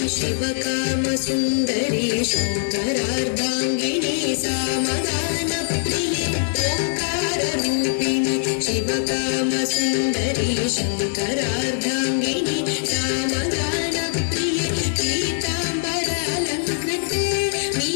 शिवकाम सुंदरी शंकरार्धांगिनी सामगान प्रिय ओंकार रूपिणी शिवकाम सुंदरी शंकरार्धांगिनी सामगान प्रिय पीतांबरालंकृते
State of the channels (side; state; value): right; silent; 64 dB below the other